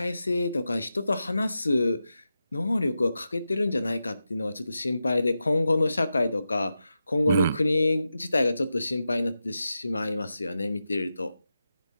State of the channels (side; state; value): both; inverted; correlation -0.90